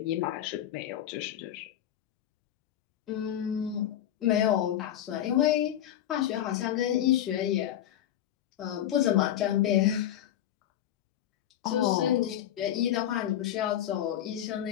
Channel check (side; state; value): right; quieter; 11.5 dB